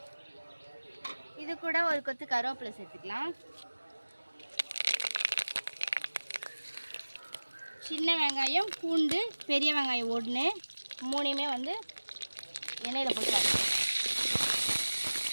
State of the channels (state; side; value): inverted; both; correlation -1.00